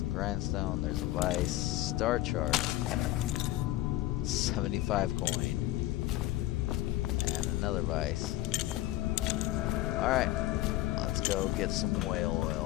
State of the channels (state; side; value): quieter; right; 16.2 dB